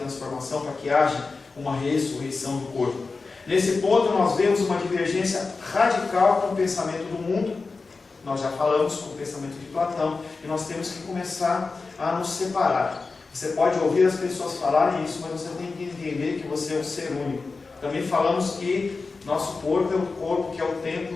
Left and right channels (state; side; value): quieter; right; 4.1 dB